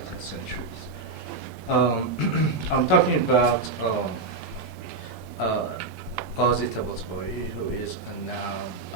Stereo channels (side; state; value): left; quieter; 3.7 dB